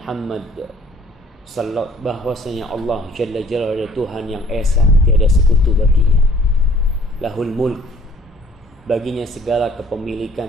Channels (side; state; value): both; normal; correlation 0.56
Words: bahwasanya Allah Jalla Jalla adalah Tuhan yang esa, tiada sekutu baginya. Lahul mulk, baginya segala